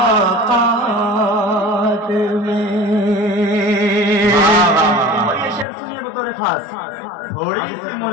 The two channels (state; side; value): drops out; right; at 5.7 s